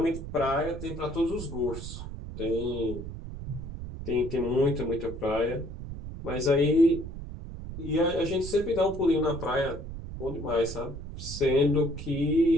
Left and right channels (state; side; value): noise; right; rumble, 9 dB below the sound